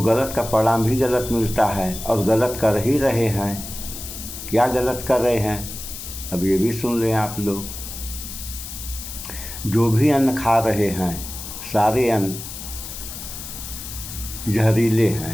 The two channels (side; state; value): left; noise; hiss, 10 dB below the sound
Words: गलत का परिणाम भी गलत मिलता है और गलत कर ही रहे हैं। क्या गलत कर रहे हैं अब ये भी सुन लें आप लोग। जो भी अन्न खा रहे हैं सारे अन्न जहरीले